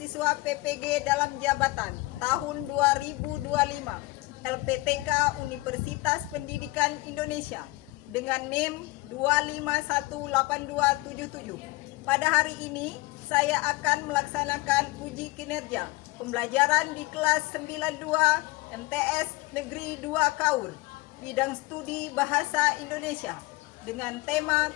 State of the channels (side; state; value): right; quieter; 21.5 dB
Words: PPG dalam jabatan tahun 2025 LPTK Universitas Pendidikan Indonesia dengan NIM 2518277. Pada hari ini saya akan melaksanakan uji kinerja pembelajaran di kelas 92 MTS Negeri 2 Kaur, bidang studi Bahasa Indonesia dengan tema